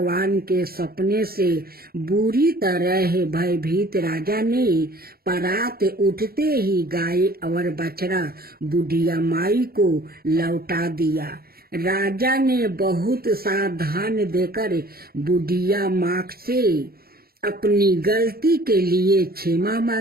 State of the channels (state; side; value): late; left; 0.44 ms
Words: के सपने से बुरी तरह भयभीत राजा ने परात उठते ही गाय और बछड़ा बुढ़िया माई को लौटा दिया। राजा ने बहुत सावधान देकर बुढ़िया माँ से अपनी गलती के लिए क्षमा